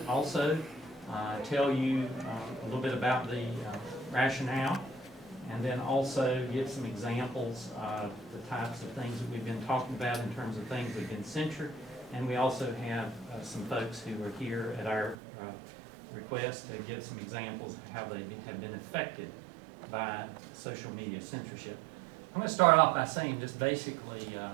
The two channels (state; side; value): drops out; left; at 15.2 s